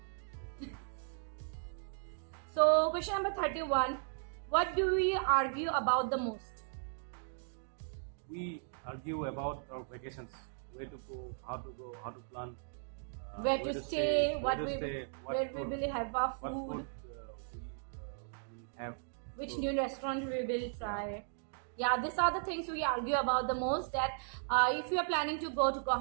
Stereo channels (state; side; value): silent; left; digital silence